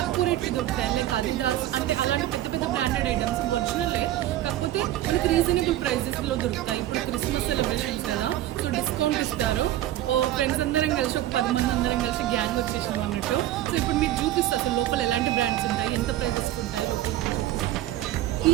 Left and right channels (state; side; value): quieter; left; 13.9 dB